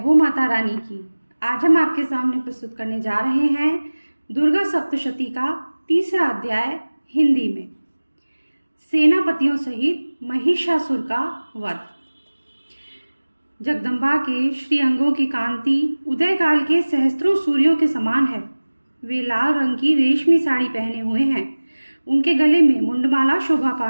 माता रानी की। आज हम आपके सामने प्रस्तुत करने जा रहे हैं दुर्गा सप्तशती का तीसरा अध्याय हिंदी में। सेनापतियों सहित महिषासुर का वध। जगदम्बा के श्री अंगों की कांति उदय काल के सहस्त्रों सूर्यों के समान है। वे लाल रंग की रेशमी साड़ी पहने हुए हैं। उनके गले में मुंडमाला शोभा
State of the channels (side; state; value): both; inverted; correlation -1.00